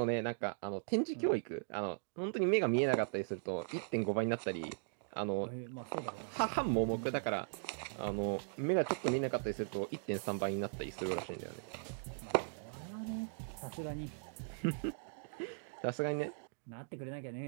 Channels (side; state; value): left; silent; digital silence